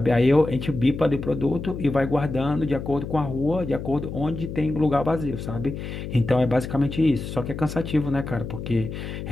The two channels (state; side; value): noise; left; hum, 7 dB below the sound